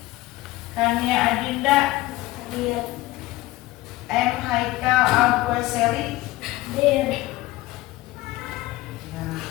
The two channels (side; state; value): right; quieter; 18.1 dB